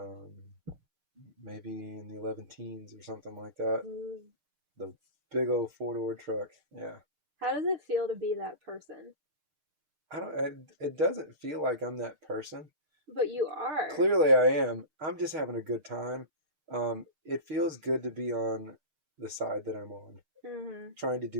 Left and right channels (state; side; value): late; left; 6.6 ms